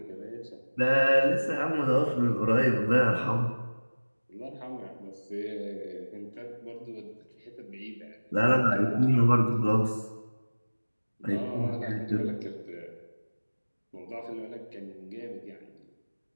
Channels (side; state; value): both; inverted; correlation -1.00